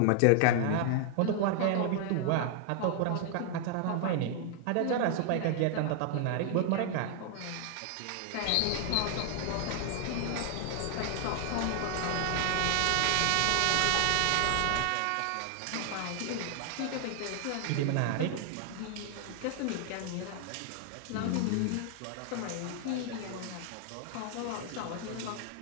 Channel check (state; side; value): different; both; correlation 0.00